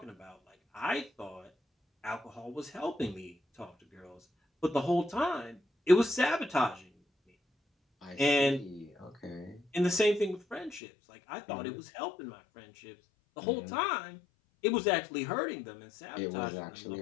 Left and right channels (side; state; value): right; drops out; at 10.8 s